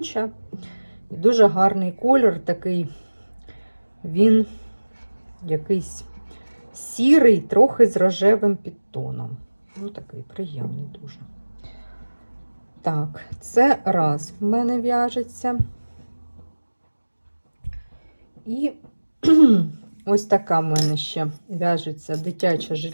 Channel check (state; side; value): inverted; both; correlation -1.00